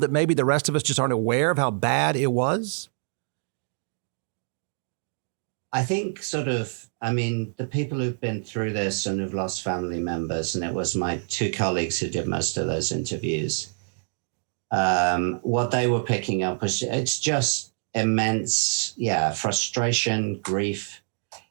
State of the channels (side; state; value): left; silent; digital silence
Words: maybe the rest of us just aren't aware of how bad it was? I think the people who've been through this and have lost family members, and it was my two colleagues who did most of those interviews, what they were picking up was it's just immense, frustration, grief.